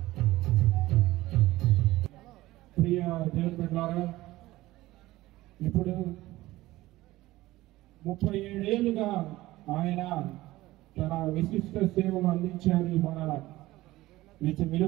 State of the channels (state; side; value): quieter; left; 17.5 dB